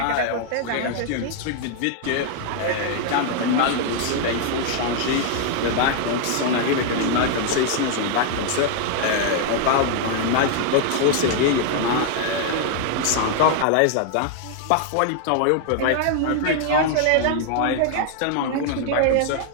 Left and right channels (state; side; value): different; both; correlation 0.00